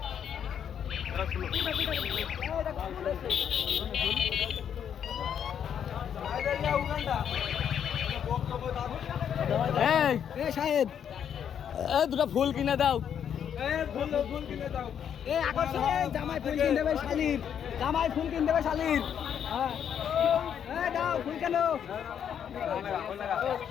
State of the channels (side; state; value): right; quieter; 8.6 dB